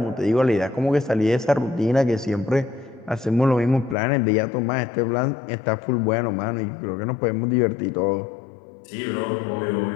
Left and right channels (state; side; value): drops out; right; at 4.0 s